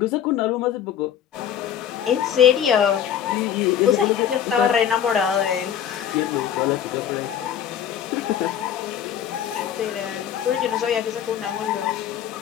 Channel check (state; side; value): quieter; right; 9.4 dB